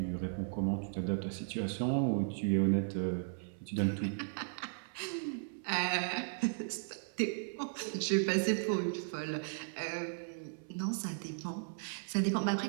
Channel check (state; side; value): silent; left; 54 dB below the other